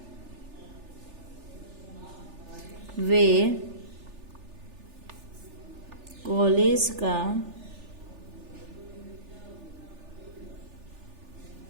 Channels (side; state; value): left; late; 3.4 ms